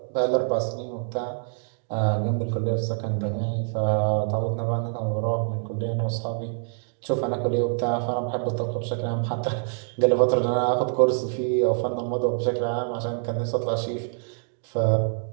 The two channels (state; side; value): silent; left; 60 dB below the other